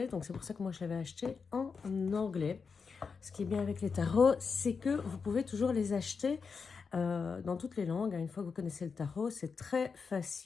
Donc, c'est pour ça que moi, je l'avais acheté en anglais. Ce qui est bien avec les tarots, c'est que vous pouvez toujours les acheter dans toutes les langues. Une fois que vous connaissez le tarot, c'est très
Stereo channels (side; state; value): right; quieter; 5.3 dB